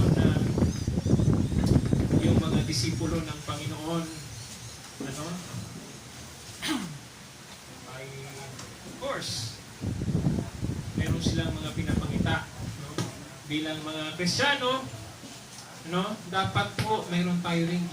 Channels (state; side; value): identical; both; correlation 1.00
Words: na yung mga disipulo ng Panginoon ay of course meron silang mga pinapangita, no? Bilang mga Kristiyano, no? Dapat po meron tayo ring